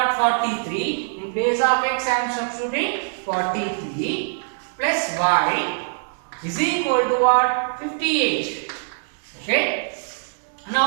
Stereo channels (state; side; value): silent; left; digital silence